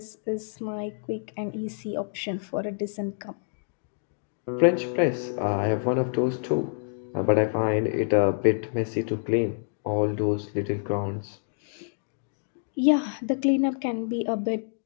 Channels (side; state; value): right; silent; digital silence